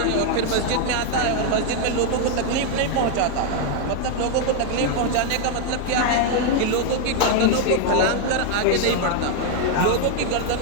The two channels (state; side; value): different; both; correlation 0.00